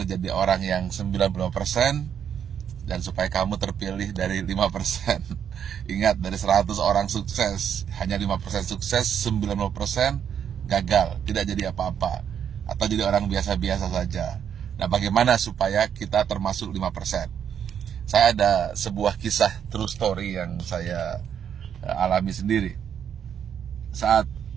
jadi orang yang 90% dan supaya kamu terpilih dari 5%. Ingat, dari 100 orang sukses, hanya 5% sukses, 90% gagal, tidak jadi apa-apa, atau jadi orang biasa-biasa saja. Nah, bagaimana supaya kita termasuk 5%? Saya ada sebuah kisah true story yang saya alami sendiri. Saat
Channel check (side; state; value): left; quieter; 8.5 dB